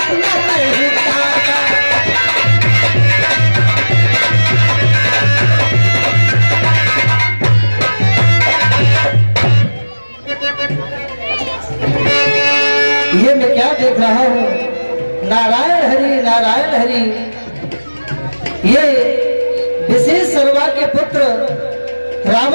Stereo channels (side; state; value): both; inverted; correlation -1.00